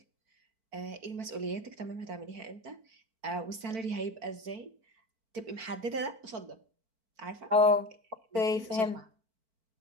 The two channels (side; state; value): left; late; 4.5 ms